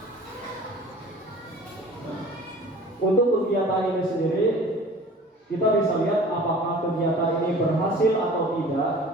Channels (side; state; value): both; normal; correlation 0.45